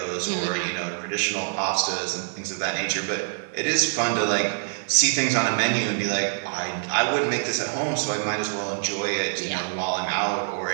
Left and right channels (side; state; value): left; silent; 56 dB below the other